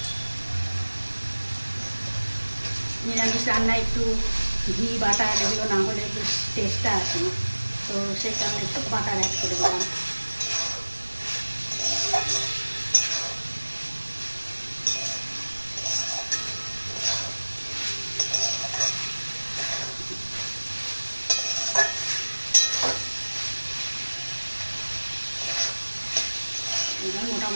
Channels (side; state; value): both; inverted; correlation -1.00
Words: নিরামিষ রান্নায় একটু ঘি বাটার এগুলো না হলে বেশ টেস্টটা আসে না, তো সেই কারণে একটু বাটার অ্যাড করে দিলাম। এবার